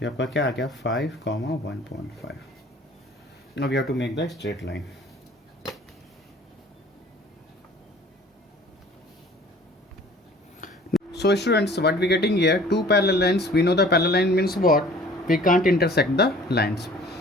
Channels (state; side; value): normal; both; correlation 0.50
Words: आपका क्या आ गया 5, 1.5। Now we have to make the straight line. So students, what we getting here, two parallel lines, we know the parallel line means what, we can't intersect the lines.